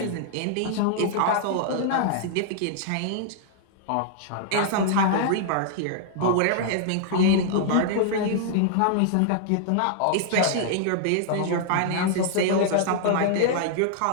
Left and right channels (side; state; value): both; different; correlation -0.01